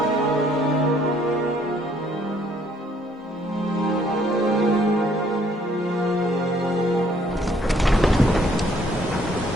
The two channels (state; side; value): normal; both; correlation 0.64